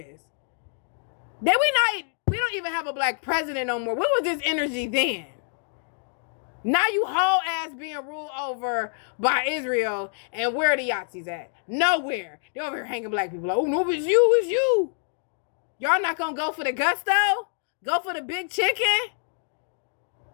We don't even have a black president no more. What was this energy then? Now you whole ass being ruled over by Israel, and where are the Yahtzees at? Nowhere. They over here hanging black people. Like, oh no, it's you. Y'all not gonna go for the gusto? Go for the big chicken?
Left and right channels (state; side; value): silent; right; digital silence